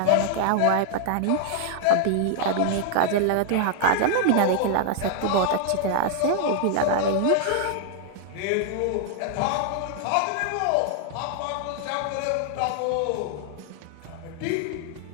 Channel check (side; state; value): both; different; correlation 0.00